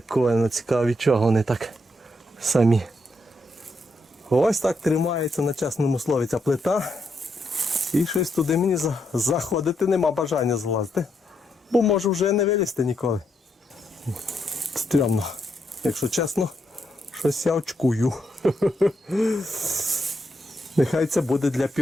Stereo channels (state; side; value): normal; both; correlation 0.79